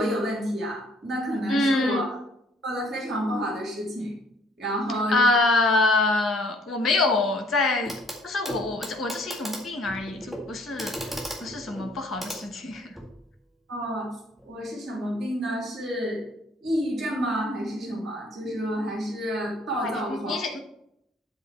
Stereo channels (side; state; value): both; normal; correlation 0.60